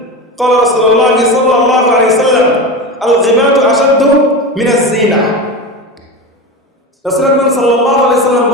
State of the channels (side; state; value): both; normal; correlation 0.24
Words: قال رسول الله صلى الله عليه وسلم الغيبة أشد من الزنا। রাসূল আকরাম সাল্লাল্লাহু আলাইহি ওয়াসাল্লাম